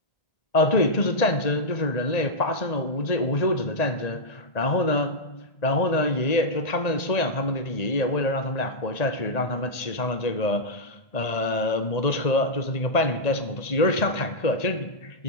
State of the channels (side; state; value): right; late; 1.8 ms